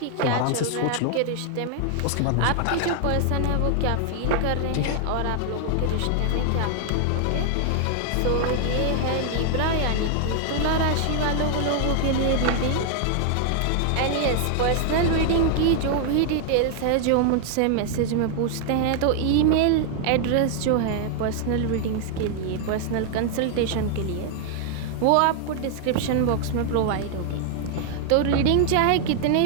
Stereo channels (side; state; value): both; different; correlation 0.00